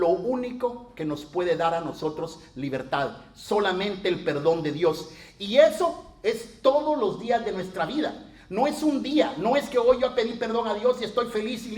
único que nos puede dar a nosotros libertad, solamente el perdón de Dios. Y eso es todos los días de nuestra vida. No es un día, no es que hoy yo pedí perdón a Dios y estoy feliz y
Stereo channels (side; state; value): both; identical; correlation 1.00